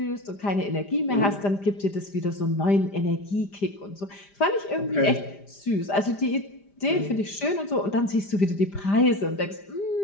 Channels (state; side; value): late; right; 5.0 ms